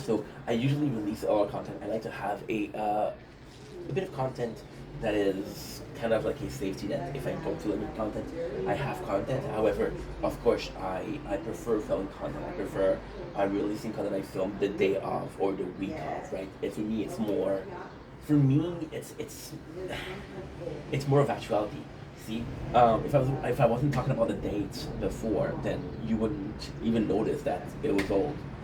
I usually release all our content. I like to have a bit of content that is kind of like a safety net. If I don't feel any content, I have content. However, of course, I prefer filming content. I prefer releasing content I filmed the day of or the week of, right? And for me, it's more. For me, it's more of actuality. See, if I wasn't talking about the dates before, then you wouldn't even notice that it was old,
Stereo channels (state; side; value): identical; both; correlation 1.00